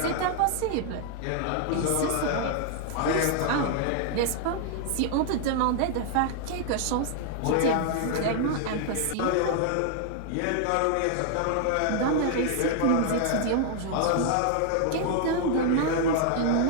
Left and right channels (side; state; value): both; different; correlation 0.00